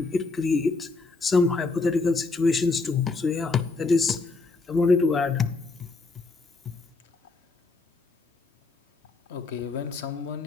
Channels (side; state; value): right; quieter; 3.8 dB